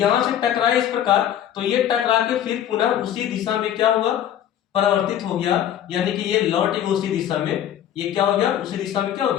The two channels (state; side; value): quieter; right; 10.7 dB